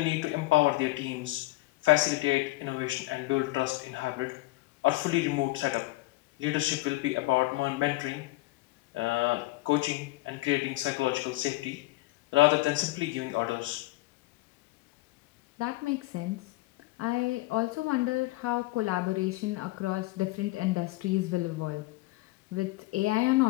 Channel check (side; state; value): right; quieter; 19.7 dB